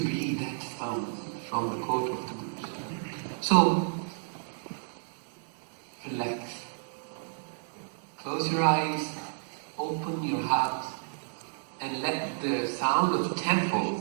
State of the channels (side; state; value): left; silent; digital silence